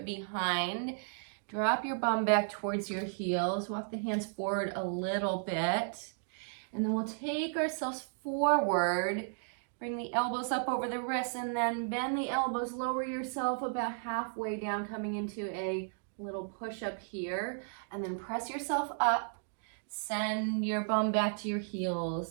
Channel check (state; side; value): silent; left; digital silence